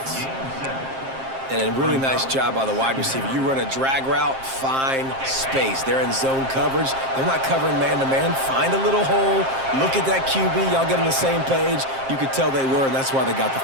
And a really nice job by the wide receiver. You run a drag route, find space. They're in zone coverage. They're not covering man-to-man. Find a little hole. Look at that QB. Y'all get on the same page. You could tell they were, and that's why they got the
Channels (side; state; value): left; late; 7.5 ms